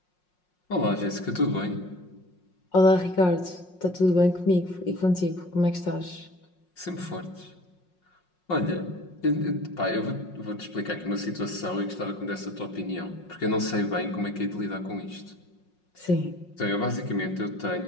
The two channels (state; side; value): late; right; 5.5 ms